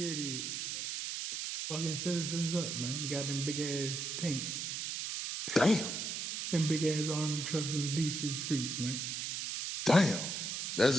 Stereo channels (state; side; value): noise; right; hiss, 3 dB below the sound